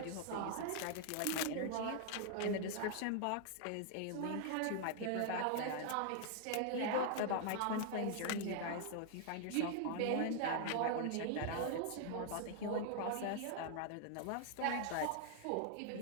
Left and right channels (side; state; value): both; different; correlation 0.00